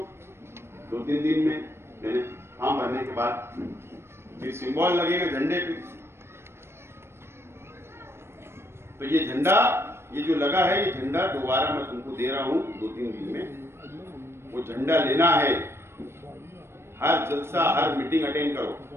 2-3 दिन में मैंने फॉर्म भरने के बाद फिर सिंबल लगेगा झंडे पे। तो ये झंडा, ये जो लगा है, ये झंडा दोबारा मैं तुमको दे रहा हूं 2-3 दिन में। वो झंडा लेना है, हर जलसा हर मीटिंग अटेंड करो,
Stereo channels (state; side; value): late; left; 0.12 ms